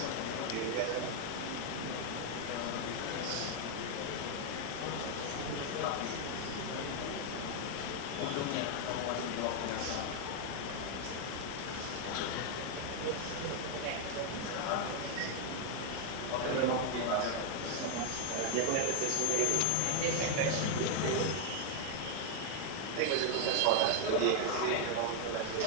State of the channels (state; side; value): different; both; correlation 0.00